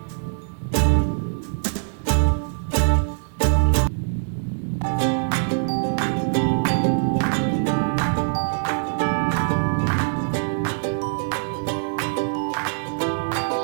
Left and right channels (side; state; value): left; silent; digital silence